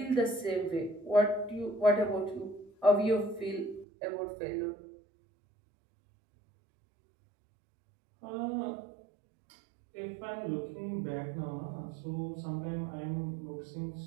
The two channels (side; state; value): left; drops out; at 3.9 s